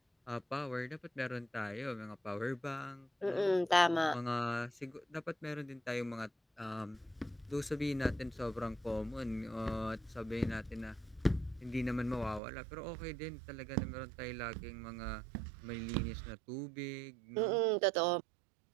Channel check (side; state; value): left; drops out; at 12.4 s